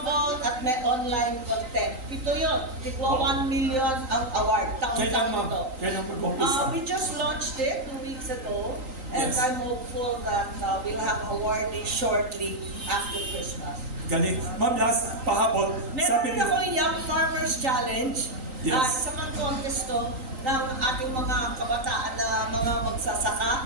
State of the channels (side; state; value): left; late; 3.8 ms